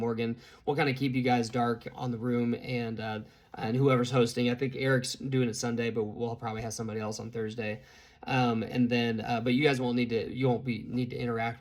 will kind of keep you guys dark on the room, and whoever's hosting. I think Eric's doing it Sunday, but we'll probably have somebody else on Thursday. And then, but you guys won't need to interact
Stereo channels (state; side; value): identical; both; correlation 1.00